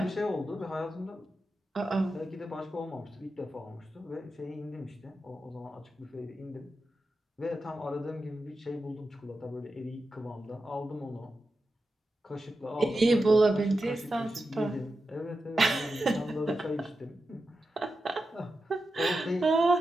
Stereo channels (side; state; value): both; normal; correlation 0.90